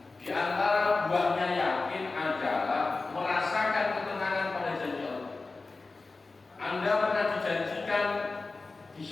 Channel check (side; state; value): right; quieter; 3.7 dB